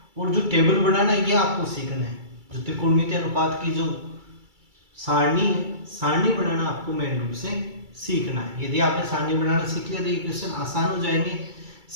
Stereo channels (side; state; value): left; late; 2.3 ms